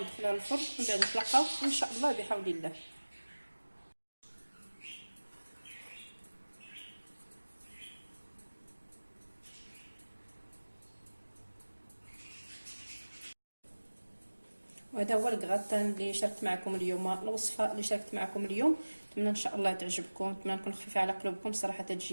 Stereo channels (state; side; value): inverted; both; correlation -1.00